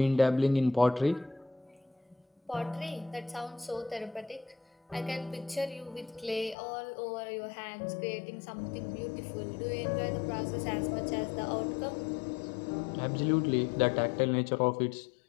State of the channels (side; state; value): right; drops out; at 6.6 s